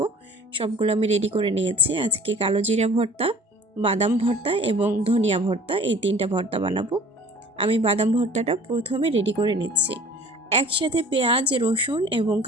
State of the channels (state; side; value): normal; both; correlation 0.49